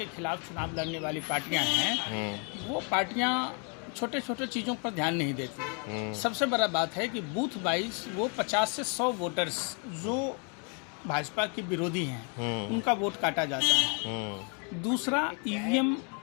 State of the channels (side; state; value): right; quieter; 37.5 dB